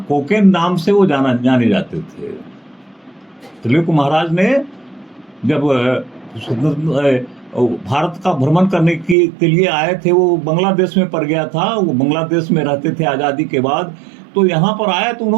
कोकेन नाम से वो जाने जाते थे। त्रैलोक्य महाराज ने जब भारत का भ्रमण करने के लिए आए थे, वो बांग्लादेश में पड़ गया था, वो बांग्लादेश में रहते थे आज़ादी के बाद, तो यहाँ पर आए तो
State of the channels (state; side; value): drops out; left; at 9.2 s